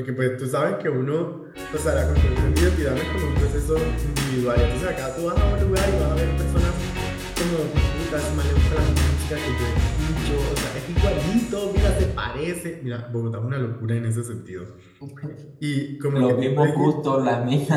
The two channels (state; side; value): identical; both; correlation 1.00